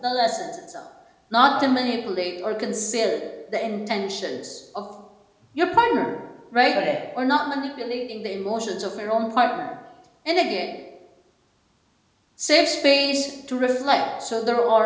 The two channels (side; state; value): both; identical; correlation 1.00